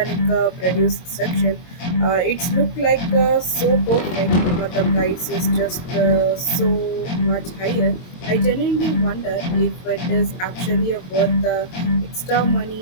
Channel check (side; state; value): right; late; 22 ms